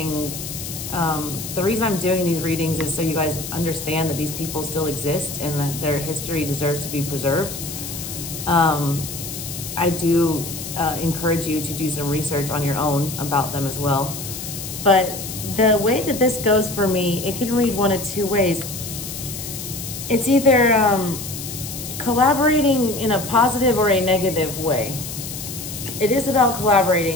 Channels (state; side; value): noise; left; hiss, 8 dB below the sound